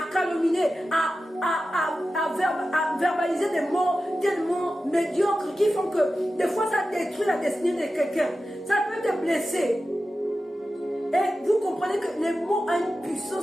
calomnier, à verbaliser des mots tellement médiocres qui font que des fois ça détruit la destinée de quelqu'un. Ça peut te blesser. Et vous comprenez que les mots ont une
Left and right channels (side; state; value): both; normal; correlation 0.93